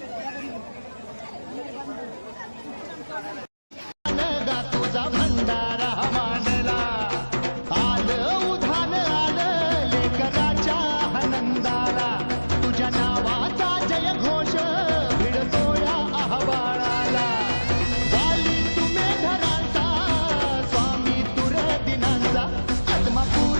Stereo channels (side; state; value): both; inverted; correlation -1.00